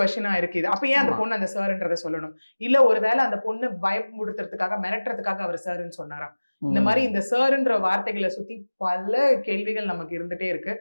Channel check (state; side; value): inverted; both; correlation -1.00